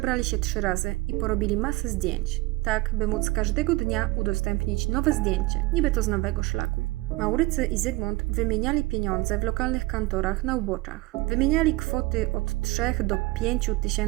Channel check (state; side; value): quieter; left; 21.7 dB